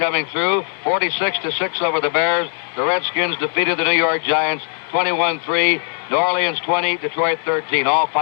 through, 46-6 over the Bears. The Redskins defeated the New York Giants 21-3. New Orleans 20, Detroit 13. All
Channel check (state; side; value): silent; right; digital silence